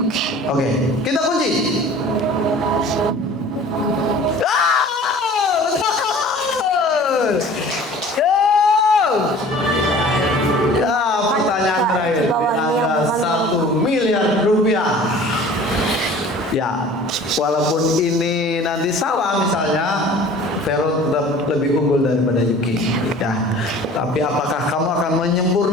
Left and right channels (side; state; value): both; normal; correlation 0.46